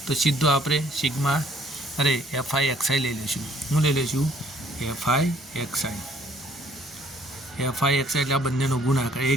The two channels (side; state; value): both; normal; correlation 0.62